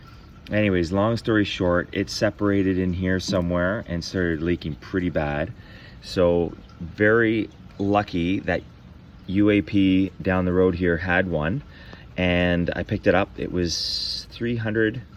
Anyways, long story short, it separated in here somewhere and started leaking pretty bad. So very lucky that UAP down the road here had one, and I picked it up. It was 300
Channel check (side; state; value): both; identical; correlation 1.00